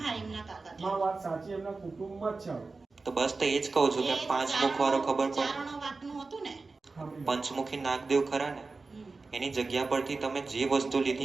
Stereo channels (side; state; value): left; quieter; 3.9 dB